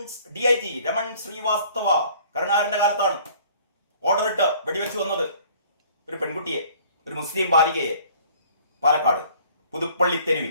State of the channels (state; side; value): inverted; both; correlation -0.55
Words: DIG രമൺ ശ്രീവാസ്തവ കരുണാകരന്റെ കാലത്താണ് ഓർഡർ ഇട്ട് വെടിവെച്ച് വന്നത് ഒരു പെൺകുട്ടിയെ, ഒരു മുസ്ലിം ബാലികയെ, പാലക്കാട് പുതുപ്പള്ളി